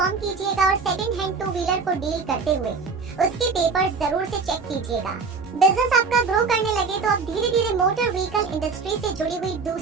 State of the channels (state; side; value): quieter; left; 4.8 dB